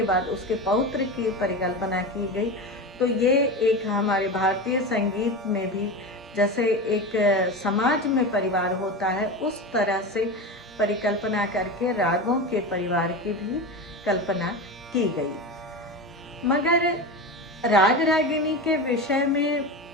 बाद उसके पौत्र की परिकल्पना की गई। तो ये एक हमारे भारतीय संगीत में भी जैसे एक समाज में परिवार होता है, उस तरह से परिकल्पना करके रागों के परिवार की भी कल्पना की गई। मगर राग रागिनी के विषय में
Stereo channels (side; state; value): both; normal; correlation 0.24